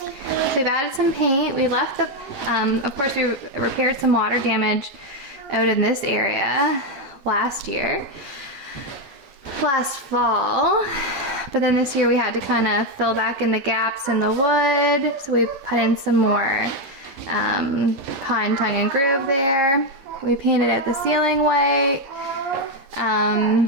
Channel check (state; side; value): late; left; 11 ms